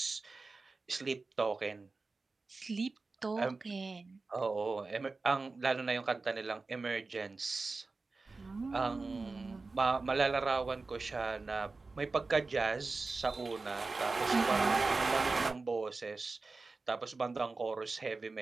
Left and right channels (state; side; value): quieter; left; 3.8 dB